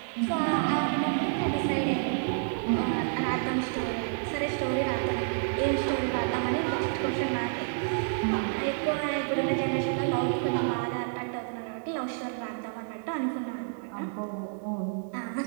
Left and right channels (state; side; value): silent; left; digital silence